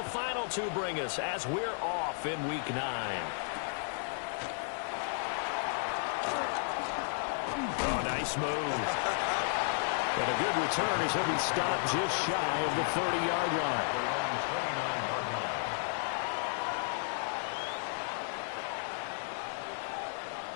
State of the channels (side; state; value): right; silent; digital silence